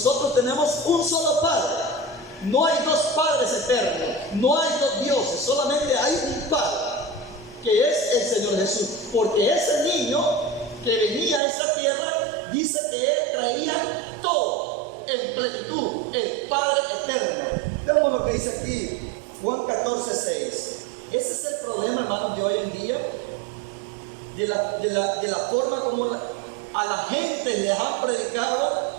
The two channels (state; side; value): drops out; left; at 11.4 s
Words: tenemos un solo Padre. No hay dos padres eternos, no hay dos dioses, solamente hay un Padre, que es el Señor Jesús. Porque ese niño que venía a esta tierra, dice que Él traía todo en plenitud, el Padre eterno. Veamos lo que dice aquí, Juan 14:6. Ese es el problema, hermanos, de hoy en día, de la forma como a la gente les han predicado,